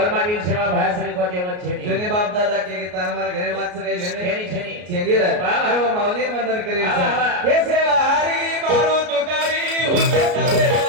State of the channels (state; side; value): late; left; 33 ms